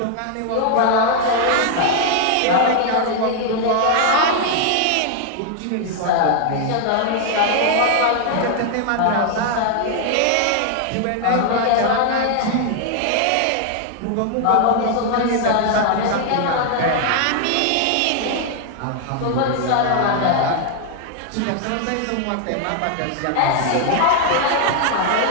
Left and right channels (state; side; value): different; both; correlation 0.00